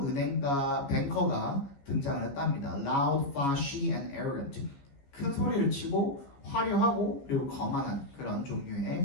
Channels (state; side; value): late; right; 15 ms